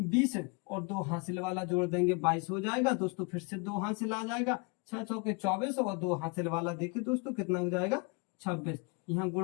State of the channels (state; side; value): quieter; right; 31.1 dB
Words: और 2 हासिल वाला जोड़ देंगे 22 हो जाएगा दोस्तों। फिर से 2 हासिल आ जाएगा, 6 चौके 24, और 2 हासिल वाला देखिए दोस्तों कितना हो जाएगा, 26। यहाँ